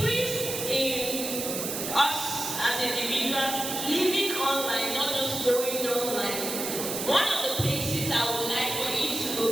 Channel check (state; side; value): noise; right; hiss, 4 dB below the sound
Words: in us as individuals living online, not just going online, one of the places I would like for you to